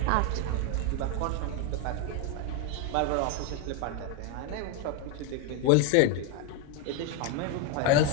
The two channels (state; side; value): different; both; correlation 0.01